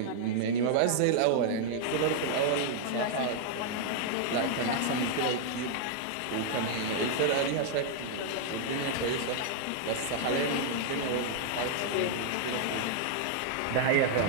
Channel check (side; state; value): both; different; correlation 0.00